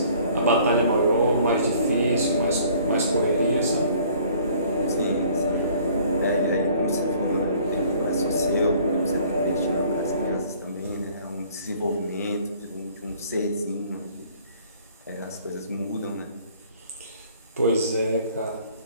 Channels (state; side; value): inverted; both; correlation -0.56